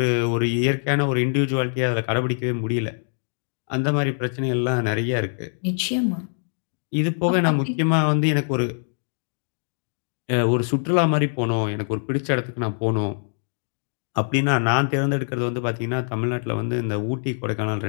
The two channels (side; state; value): right; silent; digital silence